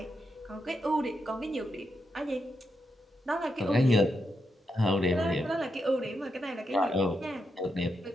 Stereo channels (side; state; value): both; normal; correlation 0.84